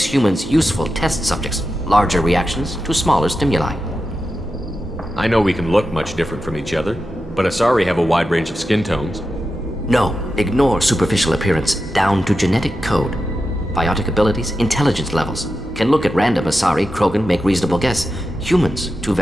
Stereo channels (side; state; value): both; normal; correlation 0.90